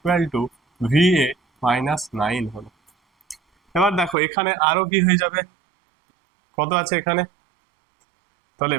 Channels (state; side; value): drops out; left; at 4.2 s